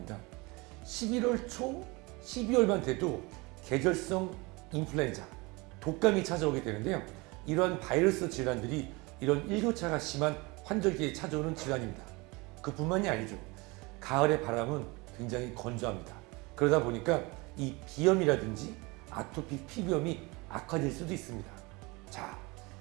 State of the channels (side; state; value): left; quieter; 25.4 dB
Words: 11월 초, 12월만 돼도 계절성 인플루엔자, 독감이 찾아오게 되는데요. 이러한 바이러스 질환들이 이런 일교차가 심한 환절기에 찾아오는 질환입니다. 그뿐만이 아니죠. 가을의 바람은 굉장히 건조합니다. 그러다 보니까 이 비염이라든지 아토피 피부염이 악화될 수도 있습니다. 자,